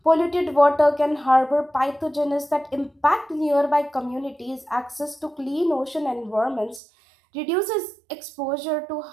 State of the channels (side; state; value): left; drops out; at 6.8 s